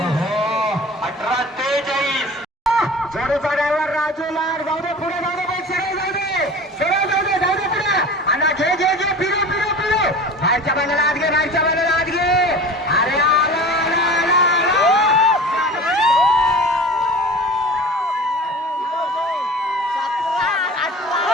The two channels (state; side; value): normal; both; correlation 0.38